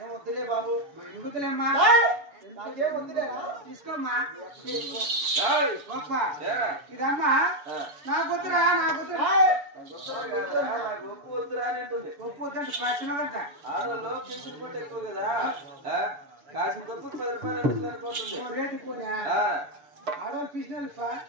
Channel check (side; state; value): left; late; 7.0 ms